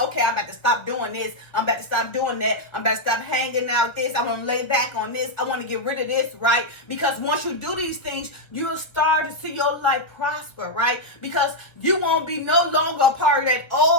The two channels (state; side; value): late; right; 1.4 ms